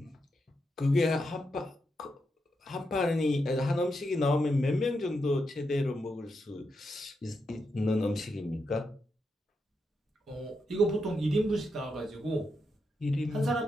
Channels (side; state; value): both; normal; correlation 0.84